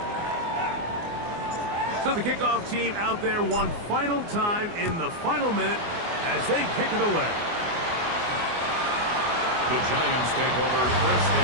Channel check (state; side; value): late; left; 24 ms